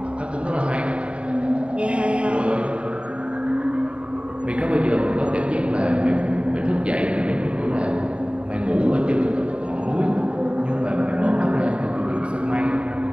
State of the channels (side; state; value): left; late; 0.058 ms